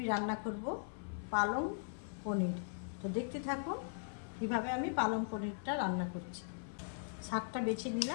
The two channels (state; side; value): silent; right; 52 dB below the other